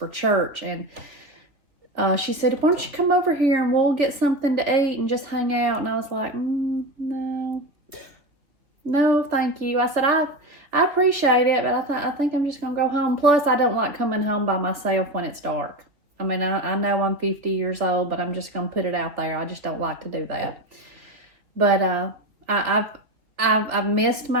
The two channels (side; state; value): left; late; 3.1 ms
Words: church, and she said, why don't you come over here and we'll get something to eat and just hang out? And I was like, no, thank you. I said, I appreciate it, but I think I'm just going to go home. Plus, I don't like coming home by myself when it's dark. I mean, I know I'm 50 years old, but I'm just going to put it out there. I just don't like to do that. But I've missed